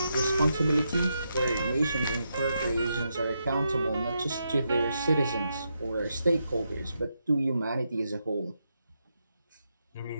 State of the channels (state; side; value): inverted; both; correlation -0.83